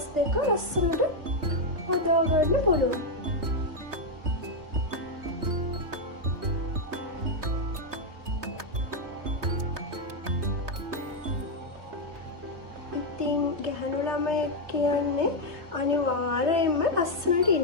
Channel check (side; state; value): left; late; 3.2 ms